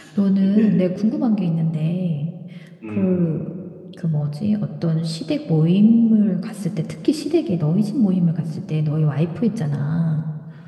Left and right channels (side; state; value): both; identical; correlation 1.00